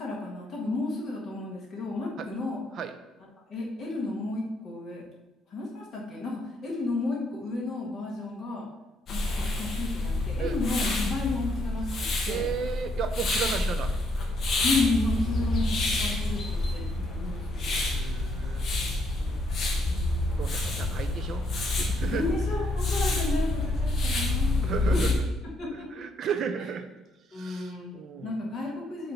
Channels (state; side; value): normal; both; correlation 0.73